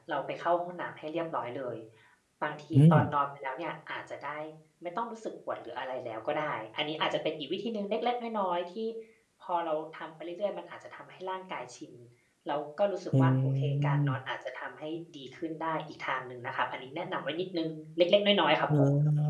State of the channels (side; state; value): both; identical; correlation 1.00